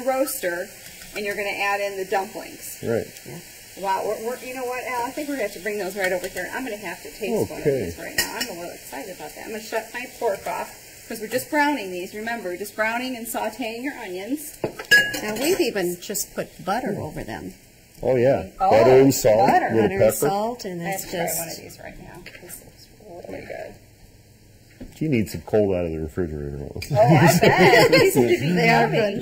roaster, and you're going to add in the dumplings. Right. Yeah. Wow. You know what, Al? I think we're going to have to bring those right over here. I'm going to have to taste one of these right now. I'm a little excited about that. I'm going to shut my pork off because we're just browning these. Remember, just browning and sautéing your onions. Now we've even just put butter over them. Oh yeah, butter and salt, butter. little Butter pepper. and salt, and I have it's to try just... one of these right now. This looks really good. You need some cold out of the refrigerator. Oh, I bet. These should be They are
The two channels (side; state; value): both; identical; correlation 1.00